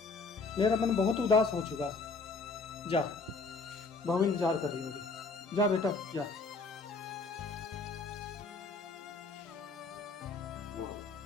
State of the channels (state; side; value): quieter; right; 4.0 dB